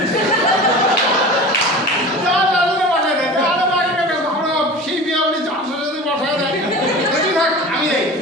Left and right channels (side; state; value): both; normal; correlation 0.35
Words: সেই বিয়ে বাড়ি যাওয়ার সাথে সাথে বসায় দেয়। থাক আমি দেয়